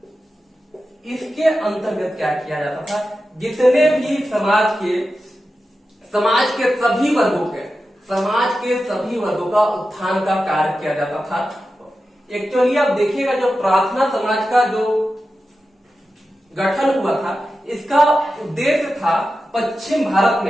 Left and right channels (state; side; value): normal; both; correlation 0.92